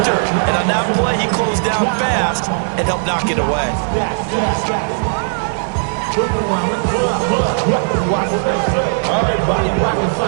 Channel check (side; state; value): left; silent; 68 dB below the other